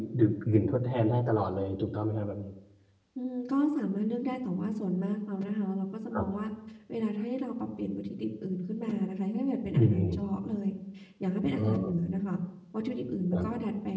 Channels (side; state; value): both; identical; correlation 1.00